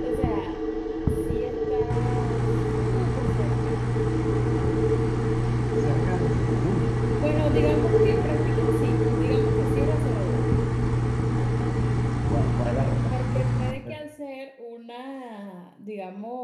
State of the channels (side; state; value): both; identical; correlation 1.00